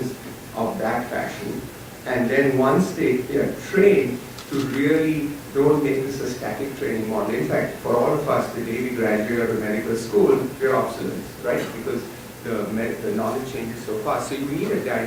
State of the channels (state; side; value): identical; both; correlation 1.00